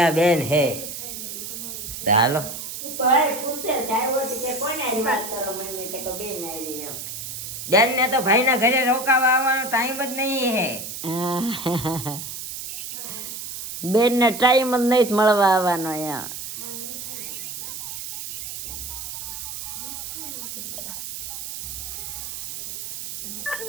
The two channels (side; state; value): right; noise; hiss, 7 dB below the sound